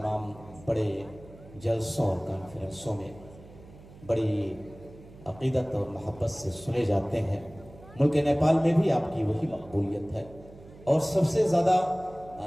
بڑے جلسوں اور کانفرنسوں میں بڑی عقیدت اور محبت سے سنے جاتے ہیں۔ ملک نیپال میں بھی آپ کی وہی مقبولیت ہے، اور سب سے زیادہ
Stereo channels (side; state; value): right; noise; hum, 20 dB below the sound